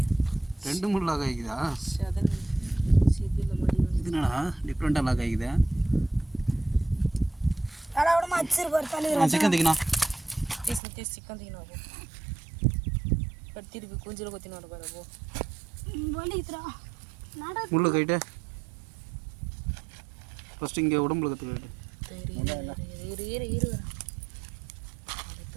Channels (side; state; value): left; drops out; at 10.8 s